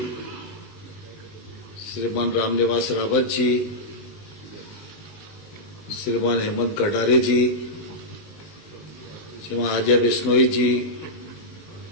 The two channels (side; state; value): right; late; 20 ms